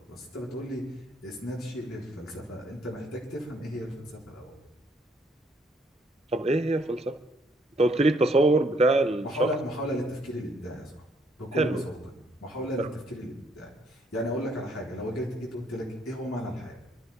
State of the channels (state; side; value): normal; both; correlation 0.68